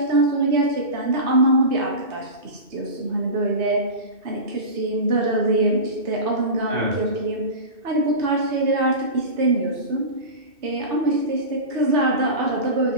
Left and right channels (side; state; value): left; late; 2.6 ms